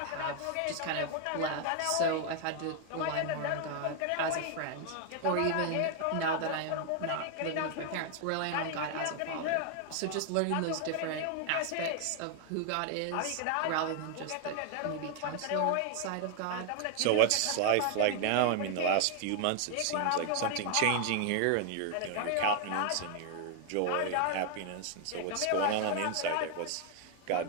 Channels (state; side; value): different; both; correlation 0.00